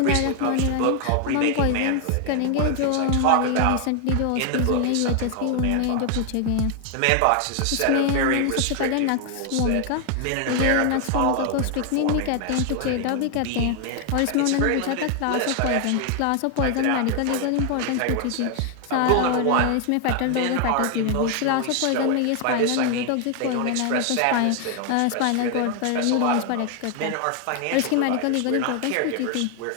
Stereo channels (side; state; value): both; different; correlation 0.00